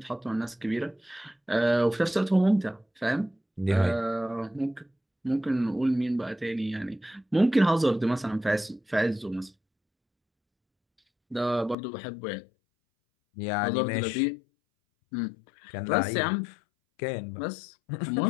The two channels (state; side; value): drops out; right; at 11.8 s